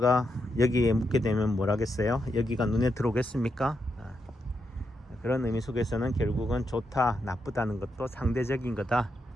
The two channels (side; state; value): both; normal; correlation 0.83